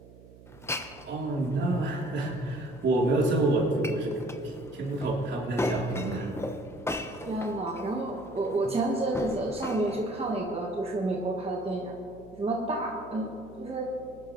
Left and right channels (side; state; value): right; noise; hum, 21 dB below the sound